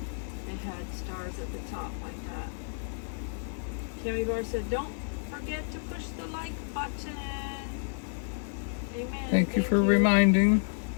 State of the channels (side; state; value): right; silent; digital silence